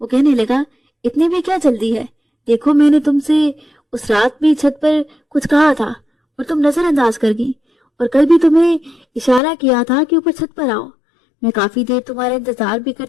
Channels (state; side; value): drops out; right; at 9.4 s